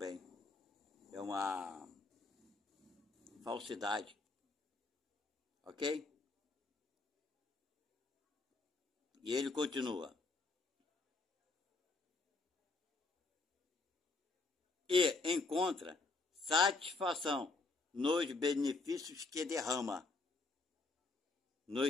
É uma falsidade. Ok? E ele continua: e encontra satisfação nos benefícios que derrama,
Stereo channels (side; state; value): right; quieter; 3.5 dB